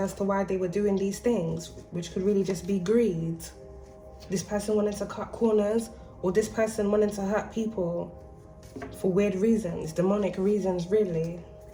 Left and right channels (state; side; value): identical; both; correlation 1.00